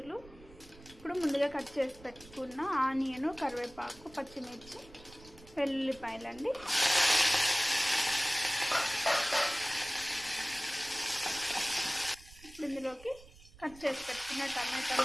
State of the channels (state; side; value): noise; right; rumble, 21 dB below the sound